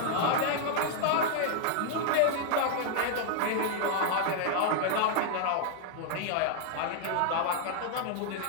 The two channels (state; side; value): different; both; correlation 0.00